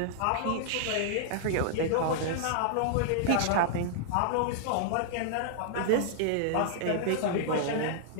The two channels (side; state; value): both; different; correlation -0.01